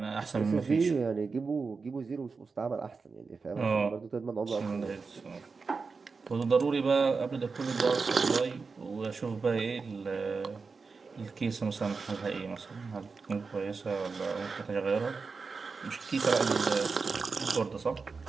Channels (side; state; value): left; quieter; 4.7 dB